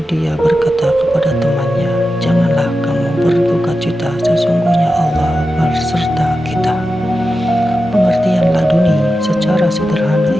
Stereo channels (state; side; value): normal; both; correlation 0.91